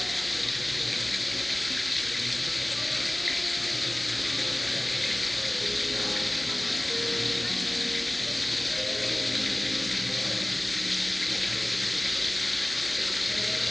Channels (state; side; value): noise; right; hum, 25 dB below the sound